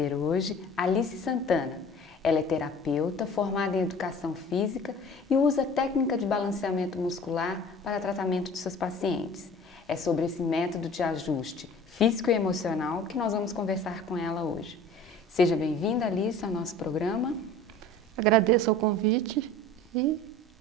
hoje Alice Santana. Ela é terapeuta, formada em educação física e usa a técnica de balanceamento muscular para tratamento de seus pacientes. É sobre esse método de ajuste físico e emocional que nós vamos conversar com ela hoje. Seja bem-vinda, Alice, ao nosso programa. Agradeço o convite e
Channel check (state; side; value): normal; both; correlation 0.44